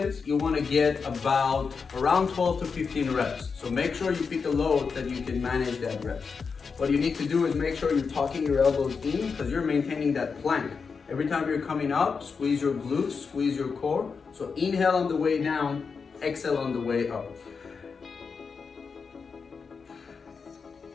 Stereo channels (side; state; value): right; quieter; 5.3 dB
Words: you want to get about around 12 to 15 reps. So make sure you pick a load that you can manage that reps. What you need to do is make sure you're tucking your elbows in because you're maintaining that plank. Every time you're coming up, squeeze your glutes, squeeze your core. So inhale on the way down, exhale on the way up.